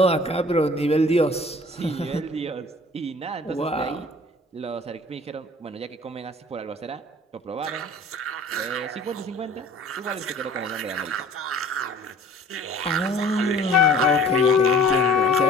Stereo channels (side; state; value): both; normal; correlation 0.48